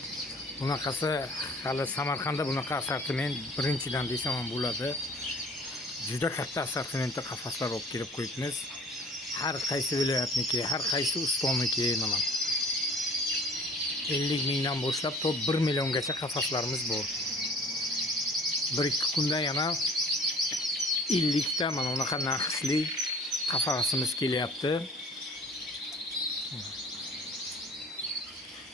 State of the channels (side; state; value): both; normal; correlation 0.49